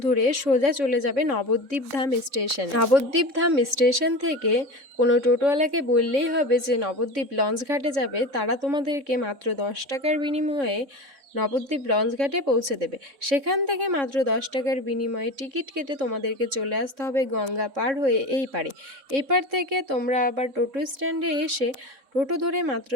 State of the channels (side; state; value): left; late; 3.6 ms